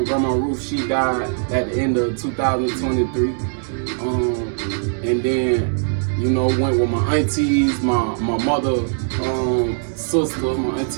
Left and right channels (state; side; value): silent; left; digital silence